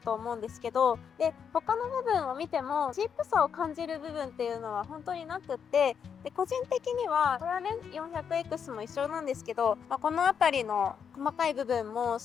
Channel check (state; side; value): quieter; right; 7.2 dB